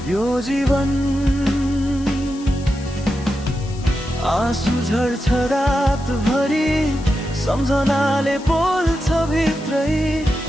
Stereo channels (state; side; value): noise; left; hiss, 20 dB below the sound